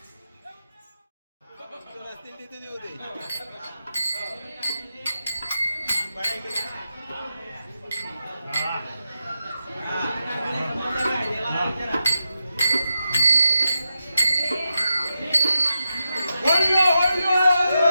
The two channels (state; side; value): inverted; both; correlation -0.87